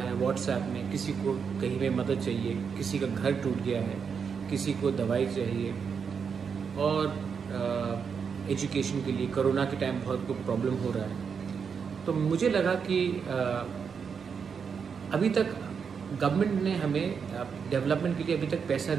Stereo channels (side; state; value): left; quieter; 6.3 dB